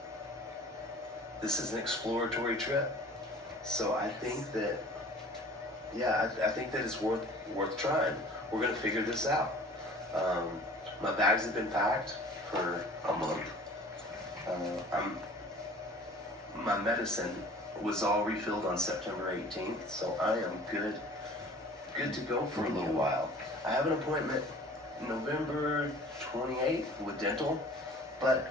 this is an exploratory trip, so I think that, I think that it's worth trying. We're gonna figure this out. My bags have been packed for a month. My medicine was all refilled on September 18th, so I am good to go for a little while. I have an appointment November 28th with dental, but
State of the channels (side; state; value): both; normal; correlation 0.46